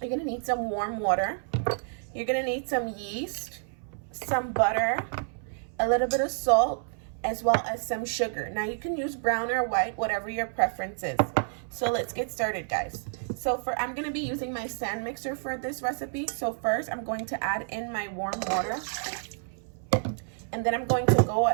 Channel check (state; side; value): silent; left; 58 dB below the other